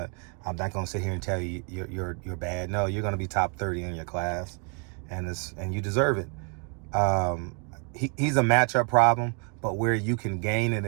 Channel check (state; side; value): quieter; left; 36.9 dB